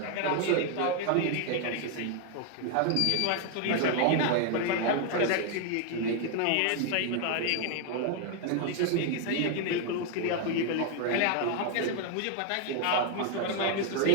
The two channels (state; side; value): different; both; correlation 0.01